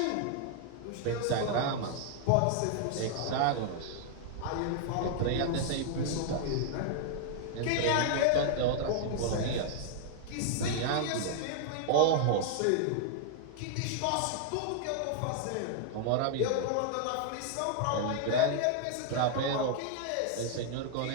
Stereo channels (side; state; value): both; different; correlation -0.01